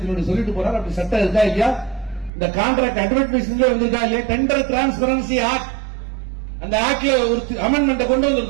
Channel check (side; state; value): left; drops out; at 2.3 s